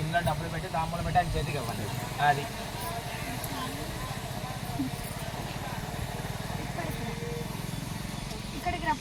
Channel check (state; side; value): identical; both; correlation 1.00